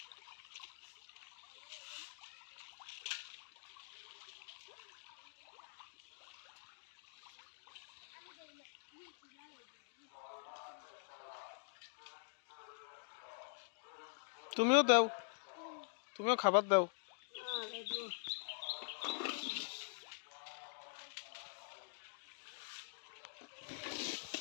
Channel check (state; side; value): silent; right; digital silence